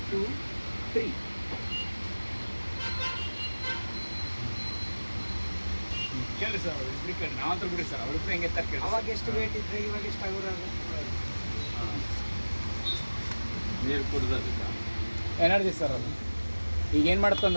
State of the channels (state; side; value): inverted; both; correlation -1.00